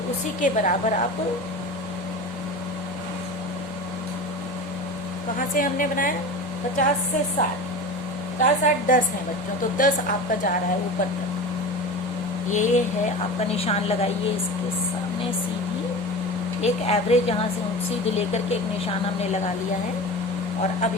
उसी के बराबर आप, कहाँ से हमने बनाया? 50 से 60, 50, 60, 10 है बच्चों। तो 10 आपका जा रहा है ऊपर तक। ये है आपका निशान लगाइए इसके सामने सीधी, एक एवरेज यहाँ से सीधी लेकर के एक निशान हमने लगा लिया है। और अब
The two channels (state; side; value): normal; both; correlation 0.31